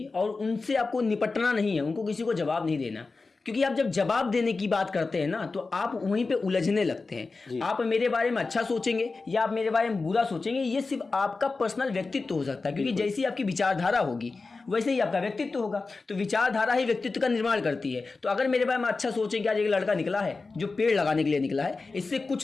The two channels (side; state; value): right; quieter; 3.9 dB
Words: और उनसे आपको निपटना नहीं है, उनको किसी को जवाब नहीं देना। क्योंकि आप जब जवाब देने की बात करते हैं ना तो आप वहीं पे उलझने लगते हैं। आप मेरे बारे में अच्छा सोचेंगे या आप मेरे बारे में बुरा सोचेंगे, ये सिर्फ आपका पर्सनल व्यक्तित्व हो सकता है, क्योंकि जैसी आपकी विचारधारा होगी वैसे ही आपका व्यक्तित्व होगा। तो विचारधारा ही व्यक्तित्व का निर्माण करती है। तो अगर मेरे बारे में अच्छा सोचेंगे, आज एक लड़का निकला है जो पेड़ लगाने के लिए निकला है, इससे